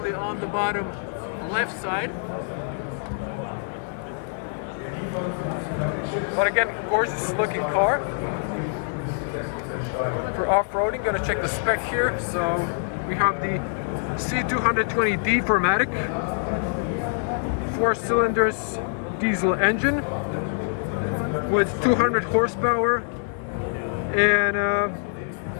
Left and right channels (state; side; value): silent; right; digital silence